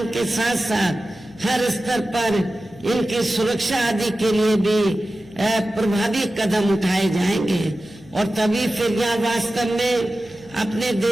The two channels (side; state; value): right; noise; hum, 26 dB below the sound